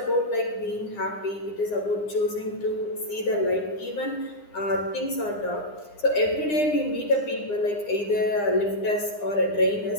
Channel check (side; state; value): right; late; 9.8 ms